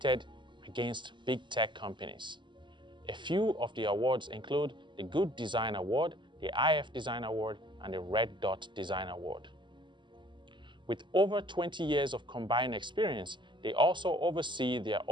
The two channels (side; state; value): left; late; 0.23 ms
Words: against big tech companies. A few of the awards include the Good Design Award, the IF Design Award, and the Red Dot Design Award. With over 20 years of combined experience, they also oversee their